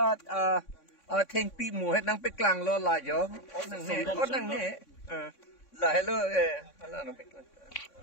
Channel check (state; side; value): late; right; 3.6 ms